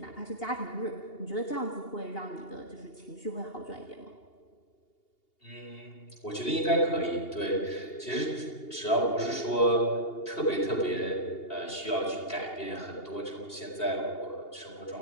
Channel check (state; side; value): late; right; 2.8 ms